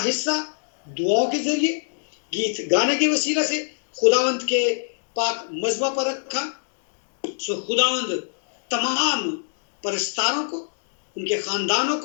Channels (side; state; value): right; silent; digital silence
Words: حصہ دعاؤں کے ذریعے، گیت گانے کے وسیلہ سے خداوند کے پاک مذبح پر رکھا۔ خداوند تمام پرستاروں کو، ان کے خاندانوں